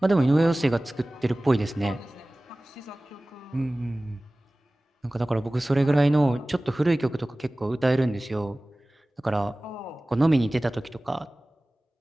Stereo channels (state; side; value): normal; both; correlation 0.98